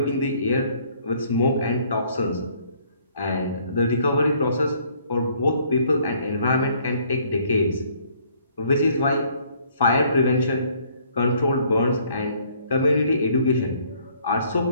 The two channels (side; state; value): both; inverted; correlation -0.62